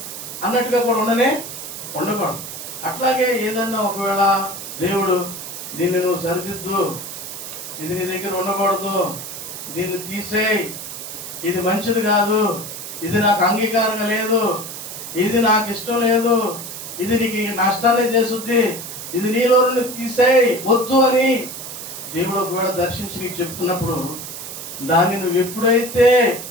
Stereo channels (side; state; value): right; noise; hiss, 9 dB below the sound